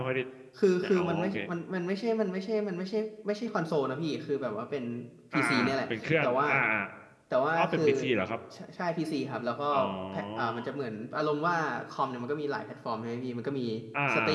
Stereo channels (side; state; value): both; identical; correlation 1.00